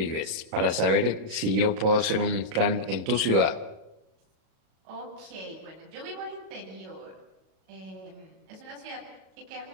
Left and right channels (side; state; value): left; late; 37 ms